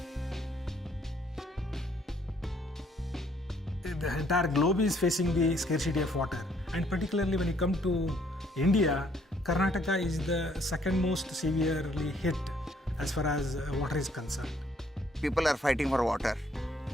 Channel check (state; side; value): normal; both; correlation 0.66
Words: The entire globe is facing the scarcity of water, and particularly when you come to India, Karnataka is the second most severely hit as far as water is concerned. People are fighting for water.